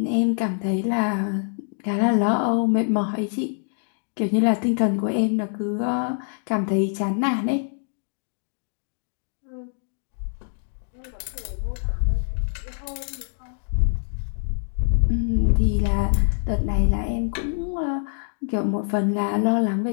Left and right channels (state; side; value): silent; right; digital silence